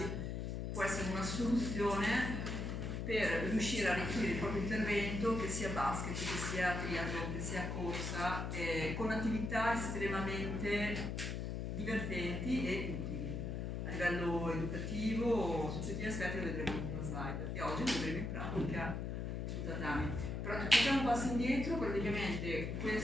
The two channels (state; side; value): noise; left; hum, 3 dB below the sound